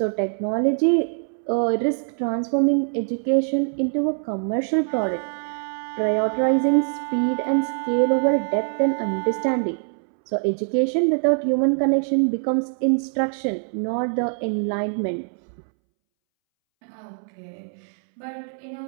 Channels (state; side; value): silent; left; 63 dB below the other